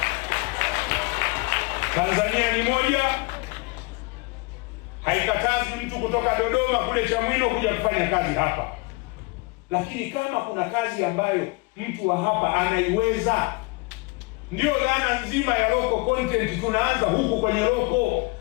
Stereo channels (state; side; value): quieter; right; 27.0 dB